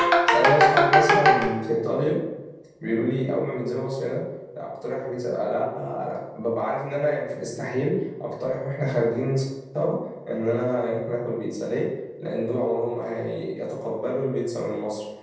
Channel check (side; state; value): both; identical; correlation 1.00